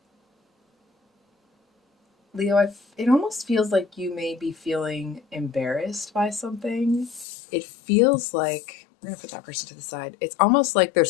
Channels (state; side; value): drops out; right; at 7.2 s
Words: Leo, it almost feels like you may be feeling embarrassed by something. It feels like we're gonna put that person to the side. It's almost like